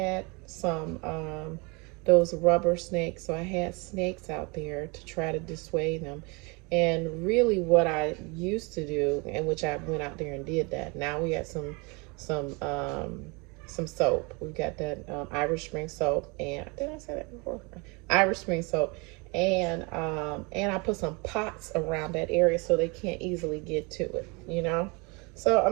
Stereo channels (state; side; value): quieter; left; 29.1 dB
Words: some those rubber snakes, so I had snakes out there to try to dissuade them. And really, what I used to do, and which I went out there and did that. Now we got some soap. We've got that Irish Spring soap, and did I say that before? Irish Spring soap. And I put some pots around that area so they can't easily get to it, you know. So